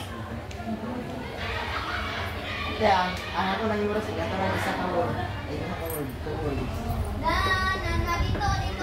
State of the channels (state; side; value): identical; both; correlation 1.00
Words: Kaya, ang ako nang yung rasig, ito lang isa ka word. Ay, isa ka word. Two words. na dito.